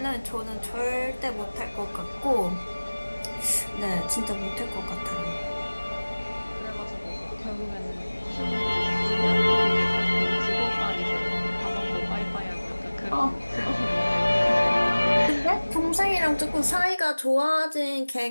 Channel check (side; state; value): both; inverted; correlation -1.00